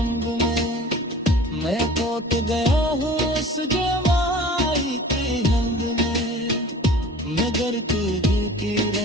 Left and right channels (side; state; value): both; normal; correlation 0.44